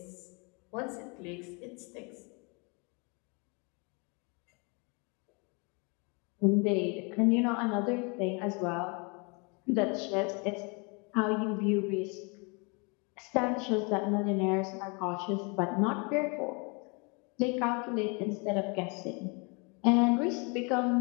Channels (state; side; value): quieter; right; 32.0 dB